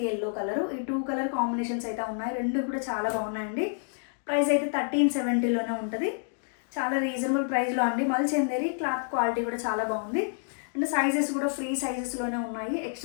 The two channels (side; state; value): right; silent; 59 dB below the other